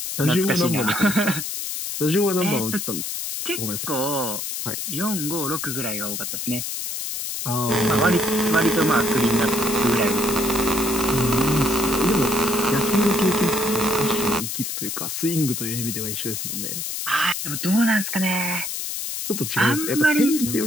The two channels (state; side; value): noise; left; hiss, 4 dB below the sound